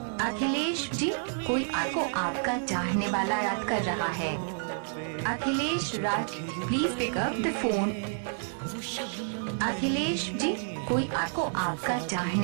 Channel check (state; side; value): silent; left; 56 dB below the other